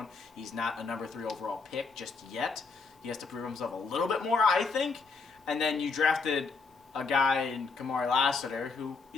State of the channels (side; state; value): right; quieter; 4.6 dB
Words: He's not a number 3 overall pick just yet. He has to prove himself a little bit more, I think. And then you drafted a guy in Kamari Lassiter, who